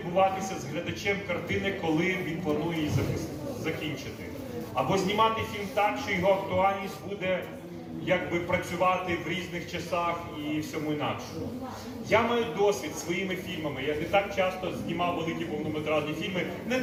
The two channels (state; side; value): identical; both; correlation 1.00